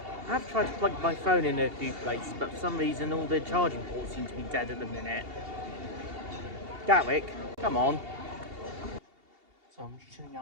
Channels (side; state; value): left; late; 2.8 ms